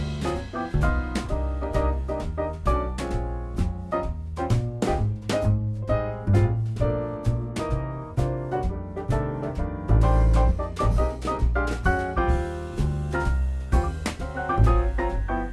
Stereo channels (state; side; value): identical; both; correlation 1.00